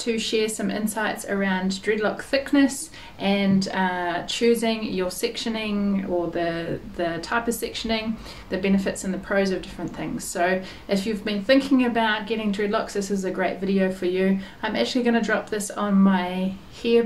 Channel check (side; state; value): both; identical; correlation 1.00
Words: share some insights around dreadlock thickness and choosing your sectioning or the type of sectioning, the benefits and the pros of different things. So if you've been thinking about getting dreadlocks, this is a great video for you. I'm actually going to drop this on my hair